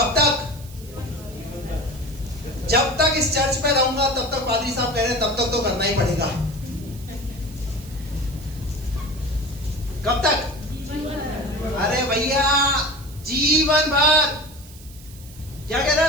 तक? जब तक इस चर्च में रहूंगा तब तक पादरी साहब कह रहे हैं, तब तक तो करना ही पड़ेगा। कब तक? अरे भैया, जीवन भर। क्या कह रहा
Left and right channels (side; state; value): right; noise; hiss, 20 dB below the sound